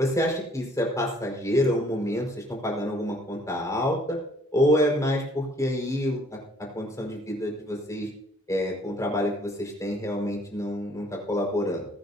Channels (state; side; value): normal; both; correlation 0.60